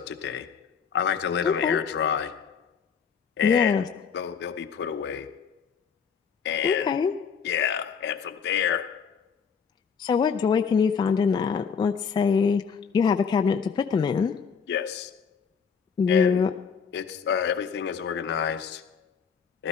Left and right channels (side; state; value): right; quieter; 6.4 dB